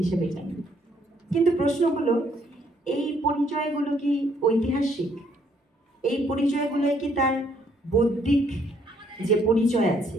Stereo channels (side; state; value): both; normal; correlation 0.68